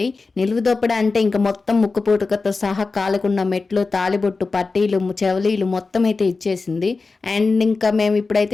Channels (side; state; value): right; quieter; 4.0 dB